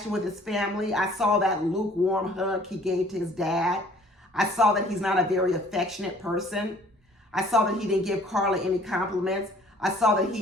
with his family. I saw that lukewarm hug he gave to his dad. I saw that he's not a very affectionate person. I saw that he didn't give Carla any compliments. I saw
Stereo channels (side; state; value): both; normal; correlation 0.55